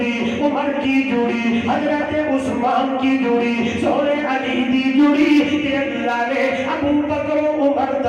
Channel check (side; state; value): both; identical; correlation 1.00